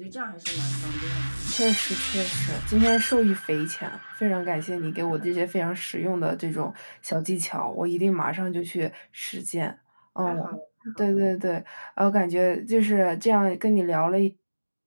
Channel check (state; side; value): inverted; both; correlation -1.00